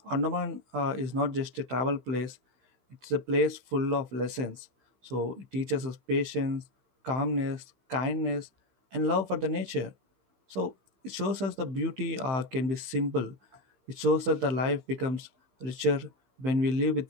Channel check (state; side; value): late; left; 15 ms